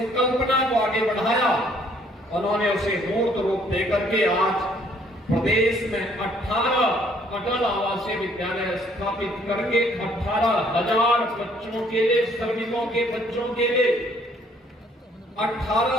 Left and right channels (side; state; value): both; normal; correlation 0.63